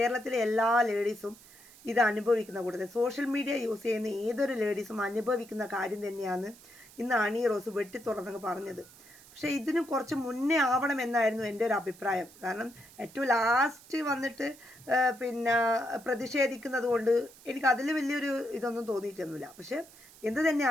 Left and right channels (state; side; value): noise; right; hiss, 22 dB below the sound